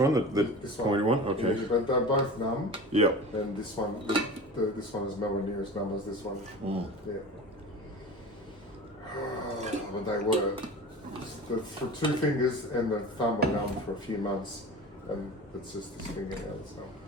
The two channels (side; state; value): both; normal; correlation 0.35